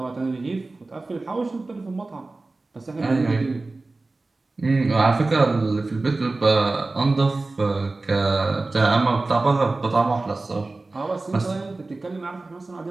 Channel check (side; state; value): left; quieter; 3.3 dB